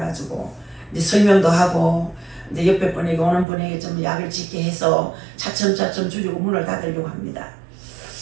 이제 설명도 하고 이제 옆에 분에게 오는 분에게 좀 약을 짓게 해서 차츰차츰 줄이고 문을 닫으려고 합니다.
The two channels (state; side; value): drops out; left; at 3.5 s